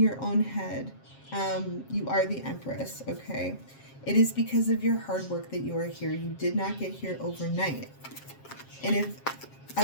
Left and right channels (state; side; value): late; right; 7.4 ms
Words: own head. You are the Empress, okay? It is because of your hard work that you are here. You did not get here overnight. And if